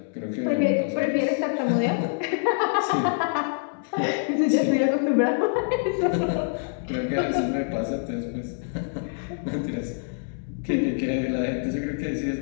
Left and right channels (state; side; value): silent; right; digital silence